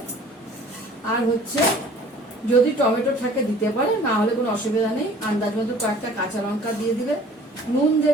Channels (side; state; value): both; normal; correlation 0.50